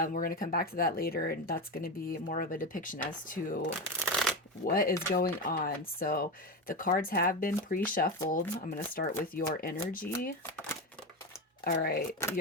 going to come back to that later, and that's going to be more of a depiction as to what is going on. So the cards have been pre-shuffled. I'm going to start with your energy. All right,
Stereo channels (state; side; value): normal; both; correlation 0.17